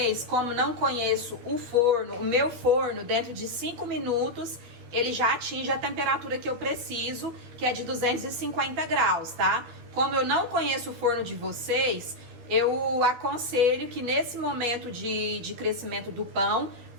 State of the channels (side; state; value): left; late; 13 ms